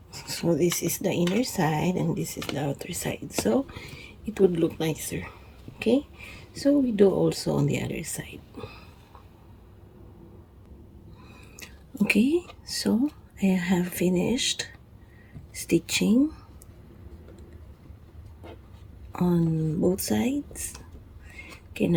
so this is the inner side and this is the outer side, so it would look nicer. Okay, so we do also on the other side. Okay, so I have finished stitching on both sides. Okay,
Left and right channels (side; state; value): both; identical; correlation 1.00